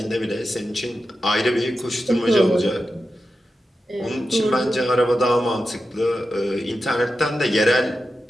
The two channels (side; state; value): both; normal; correlation 0.91